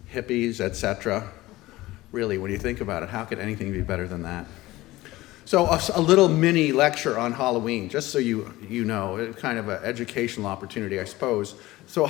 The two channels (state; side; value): quieter; right; 18.0 dB